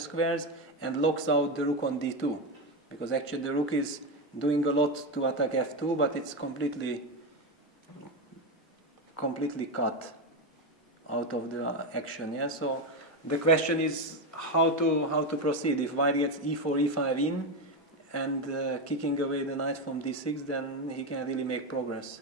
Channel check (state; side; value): normal; both; correlation 0.12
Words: and locks out the rook on d2. Because actually the rook is doing a lot to attack f2, but it's completely cut out of the action. Yeah. So the question is how to proceed. If white gets e4, e5 in, and kicking away the knight from d6, then he can really make progress.